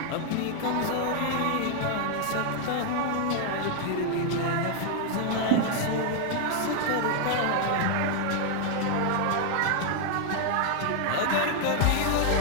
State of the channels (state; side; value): different; both; correlation 0.00